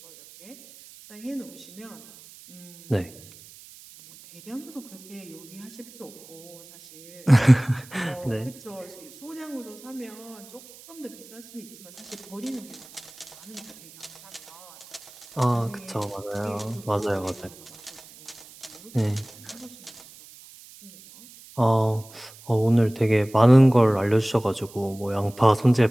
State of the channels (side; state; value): right; noise; hiss, 20 dB below the sound